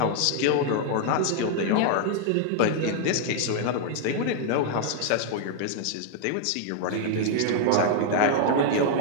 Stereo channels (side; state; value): both; different; correlation -0.01